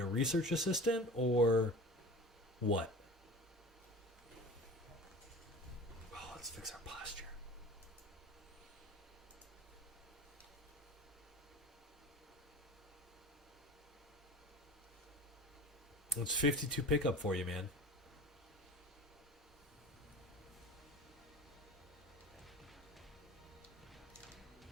research assistant? Or what? Oh, let's fix our posture. It's 52 pickup for you, man.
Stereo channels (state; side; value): normal; both; correlation 0.37